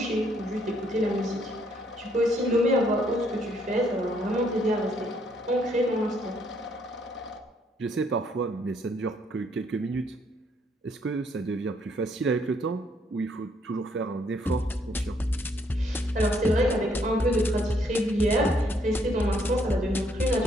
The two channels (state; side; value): normal; both; correlation 0.69